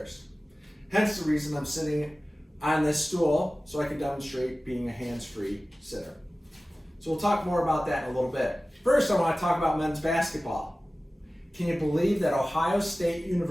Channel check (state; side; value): normal; both; correlation 0.96